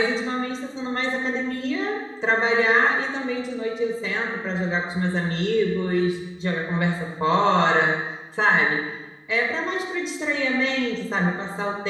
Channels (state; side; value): identical; both; correlation 1.00